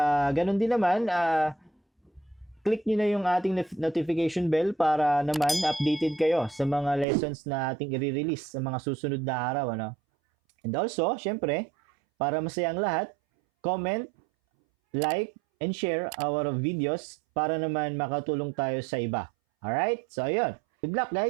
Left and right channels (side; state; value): left; drops out; at 7.1 s